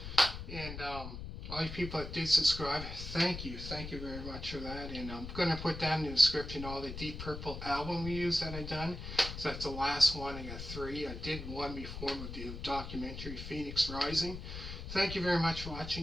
and all you people that did subscribe, thank you very much for that. And I'm going to put down in the description all the Deep Purple album reviews that I've done. So that's the last one. I got 3. I did one before with the documentary Phoenix Rising. Thank you very much for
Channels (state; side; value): noise; left; rumble, 8 dB below the sound